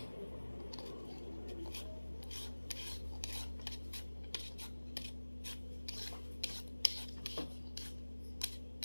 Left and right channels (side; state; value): both; inverted; correlation -1.00